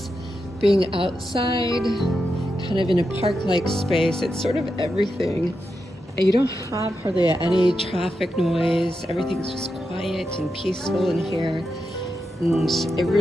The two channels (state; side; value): normal; both; correlation 0.87